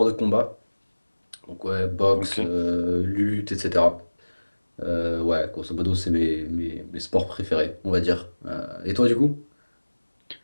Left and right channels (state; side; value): inverted; both; correlation -1.00